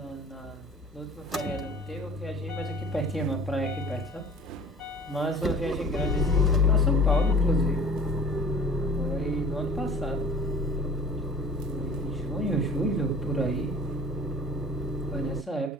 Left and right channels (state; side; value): normal; both; correlation 0.46